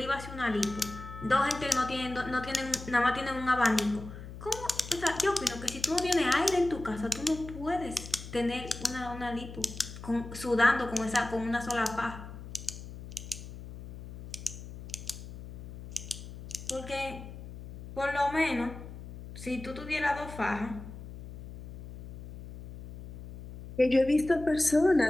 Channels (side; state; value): left; noise; hum, 12 dB below the sound